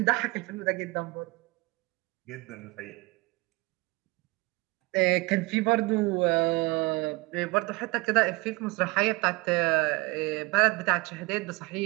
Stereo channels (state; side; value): quieter; left; 24.0 dB